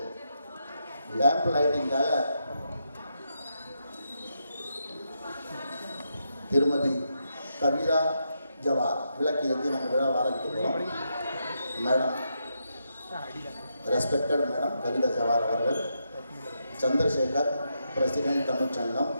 லேம்ப் லைட்டிங்காக திருமதி கவிதா ஜவார் விளக்கு ஏற்றி நம்ம விழாவை ஆரம்பிக்க போகிறோம். Madam, respected madam Kavita Jawar அவர்கள், Chandrasekhar president Tamil Sangam,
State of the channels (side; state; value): both; inverted; correlation -0.82